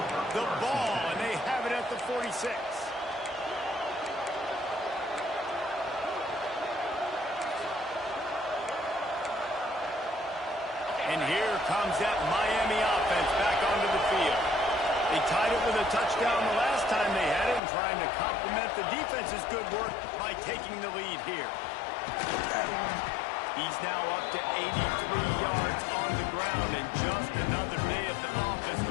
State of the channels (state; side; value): drops out; right; at 17.6 s